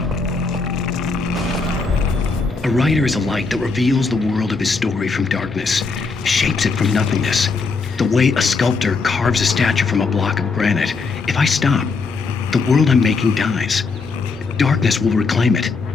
A writer is a light that reveals the world of his story from darkness, shapes it from nothingness. The way a sculptor carves a statue from a block of granite. If I stop, the world I'm making dies. Darkness will reclaim it.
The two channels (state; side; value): quieter; right; 4.3 dB